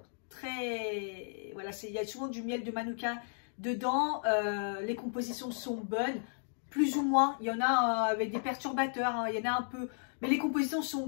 Très... Voilà, il y a souvent du miel de manuka dedans. Les compositions sont bonnes, plus ou moins. Il y en a avec des perturbateurs, hein, il y en a un peu. Mais les compositions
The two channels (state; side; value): silent; right; digital silence